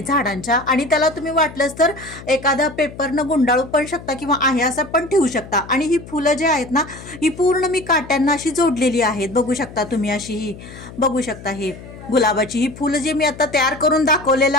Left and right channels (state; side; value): noise; left; hum, 16 dB below the sound